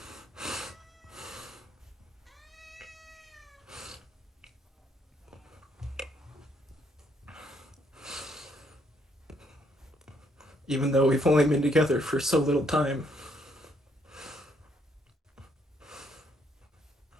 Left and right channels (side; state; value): both; normal; correlation 0.70